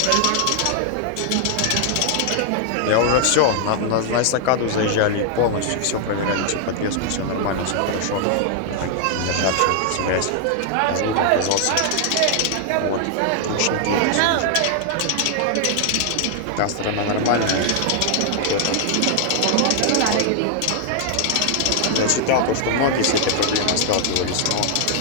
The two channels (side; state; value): both; different; correlation 0.00